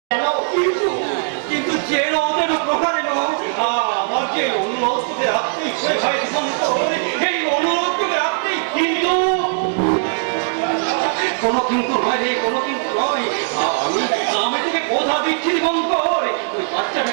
কেন? কিন্তু যে ওদের উপকারে আমার যে অনুরোধ তোকে রাখতেই এই অনুরোধ তোকে রাখতেই, কিন্তু কোনো কিন্তু নয় রে, কোনো কিন্তু নয়। আমি তোকে কথা দিচ্ছি দিগঙ্কর,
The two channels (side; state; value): left; silent; 66 dB below the other